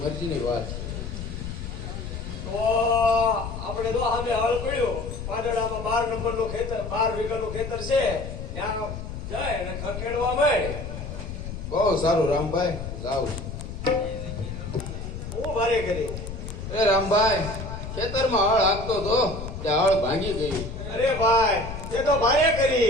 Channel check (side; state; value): left; noise; rumble, 8 dB below the sound